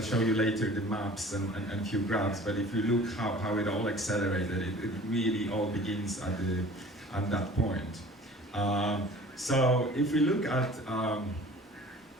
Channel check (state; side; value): normal; both; correlation 0.46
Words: show you later the maps and few graphs, but if you look how it all accelerated, it really all begins at that point. So if we look at, so I'm